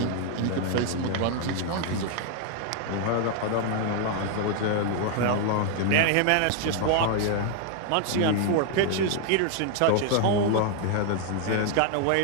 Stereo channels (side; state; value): both; different; correlation 0.00